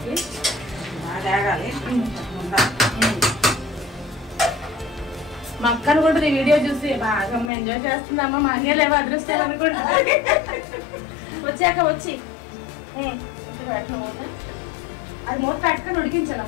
బాగా వేగాలి. మా అక్కను కూడా ఈ వీడియో చూసి బాగా ఎంజాయ్ చేస్తుందమ్మా. మా అన్నీ లేవో అదృష్టం అనుకుంటా. వచ్చాక వచ్చి అది మూత పెట్టుకొని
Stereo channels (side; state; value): right; drops out; at 7.5 s